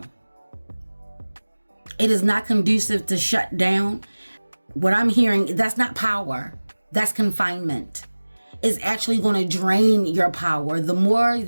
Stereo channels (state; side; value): inverted; both; correlation -1.00